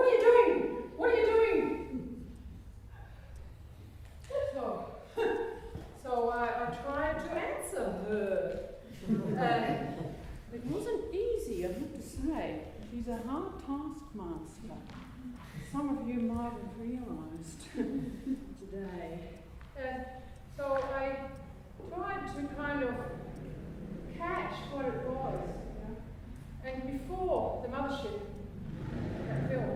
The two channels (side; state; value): both; identical; correlation 1.00